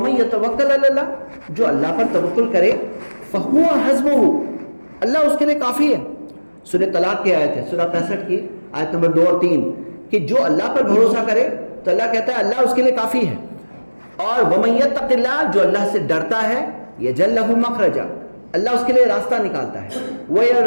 یتوکل علی اللہ، جو اللہ پر توکل کرے فہو حسبہ، اللہ اس کے لیے کافی ہے. سورہ طلاق کی آیت ہے، سورہ 65 کی آیت نمبر 2 اور 3، کہ جو اللہ پر بھروسہ کرے تو اللہ کہتا ہے اللہ اس کے لیے کافی ہے. اور ومن یتق اللہ، جو اللہ سے ڈرتا ہے، یجعل لہ مخرجا، اللہ اس کے لیے راستہ نکالتا ہے.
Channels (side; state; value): both; inverted; correlation -1.00